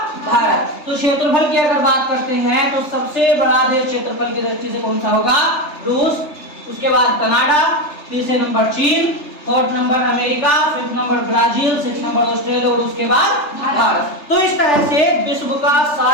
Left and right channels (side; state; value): right; late; 3.4 ms